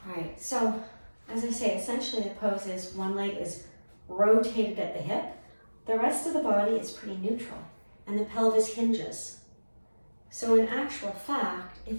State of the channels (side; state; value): both; inverted; correlation -1.00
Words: All right, so as I say, essentially the pose is one leg is rotated at the hip. The rest of the body is pretty neutral, and the pelvis hinges. So in actual fact,